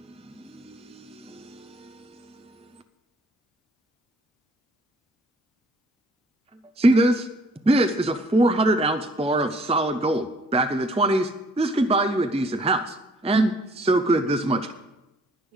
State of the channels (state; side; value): normal; both; correlation 0.60